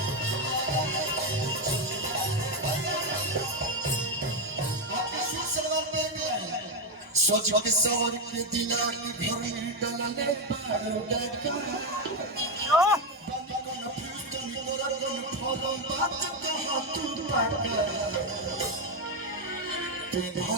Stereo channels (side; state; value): both; normal; correlation 0.07